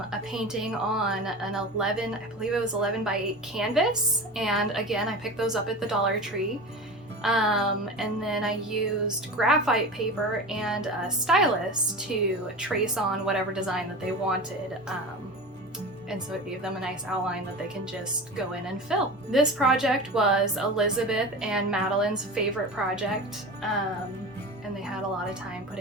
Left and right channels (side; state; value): both; normal; correlation 0.30